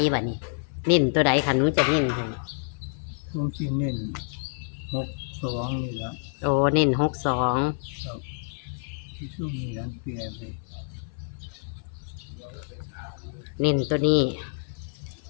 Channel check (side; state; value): right; silent; 59 dB below the other